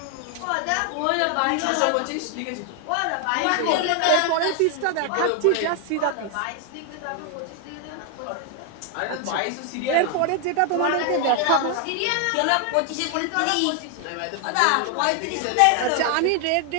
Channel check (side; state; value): both; different; correlation 0.00